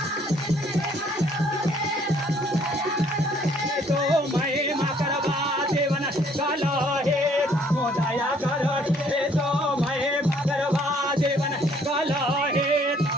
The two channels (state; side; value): normal; both; correlation 0.62